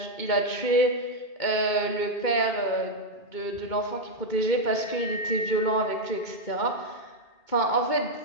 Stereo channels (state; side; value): late; right; 2.2 ms